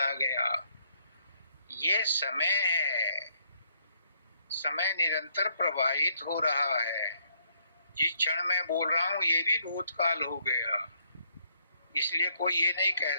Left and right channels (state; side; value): inverted; both; correlation -0.70